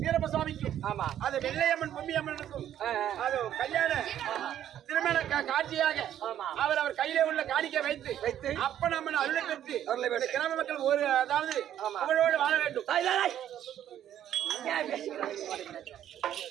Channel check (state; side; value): quieter; left; 10.9 dB